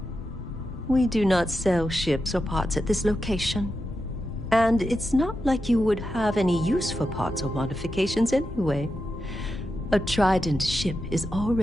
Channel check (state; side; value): normal; both; correlation 0.89